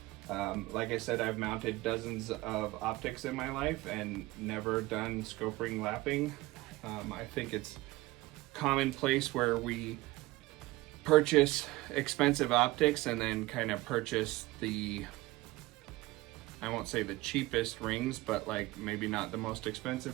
Like I said, I've mounted dozens of optics in my life and never done scope ring lapping. I think it's commonplace where we purchase expensive optics and then kind of purchase the, I won't say the cheapest rings, but like maybe not the most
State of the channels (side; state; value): left; quieter; 19.7 dB